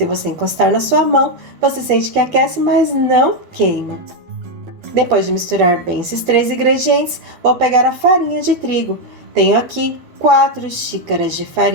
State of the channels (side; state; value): left; late; 12 ms